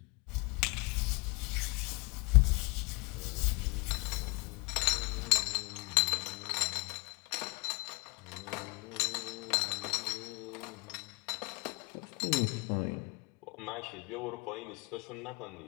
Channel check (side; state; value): right; quieter; 28.3 dB